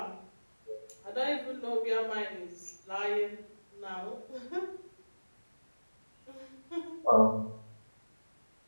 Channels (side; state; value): both; inverted; correlation -1.00